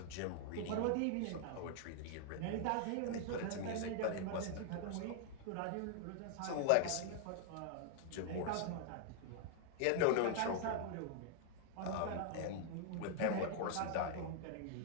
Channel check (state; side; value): different; both; correlation 0.00